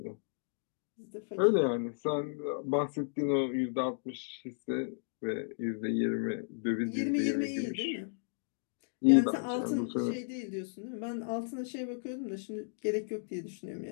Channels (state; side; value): silent; right; digital silence